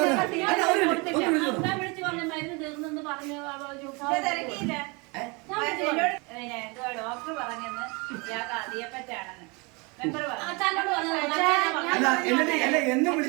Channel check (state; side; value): quieter; left; 28.9 dB